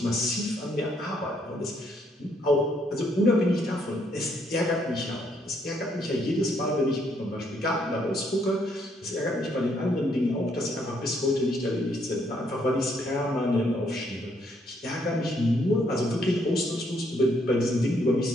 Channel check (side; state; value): both; normal; correlation 0.71